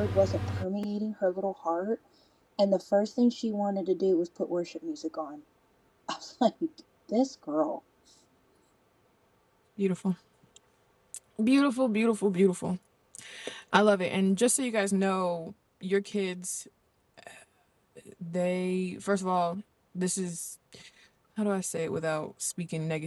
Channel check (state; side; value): identical; both; correlation 1.00